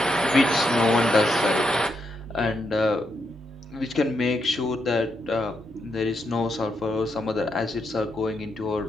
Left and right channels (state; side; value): normal; both; correlation 0.81